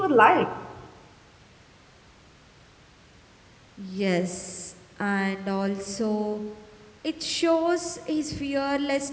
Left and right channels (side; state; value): both; identical; correlation 1.00